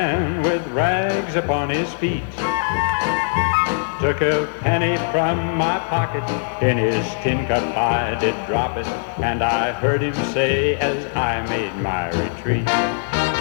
with rags upon his feet. Took a penny from my pocket, in his tin cup I did drop it, and I heard him say as I made my retreat,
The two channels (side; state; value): right; silent; digital silence